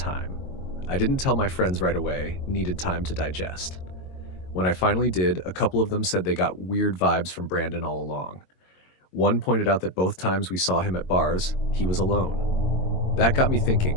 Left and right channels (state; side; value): late; right; 22 ms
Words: I didn't tell my friends right away, needed time to digest. When I finally did, a couple of them said they got weird vibes from Brandon all along. One pointed out that both times we saw him at bars, he was alone. That got me